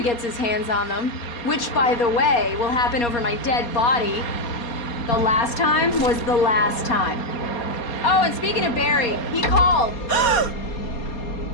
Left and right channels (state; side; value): late; right; 4.2 ms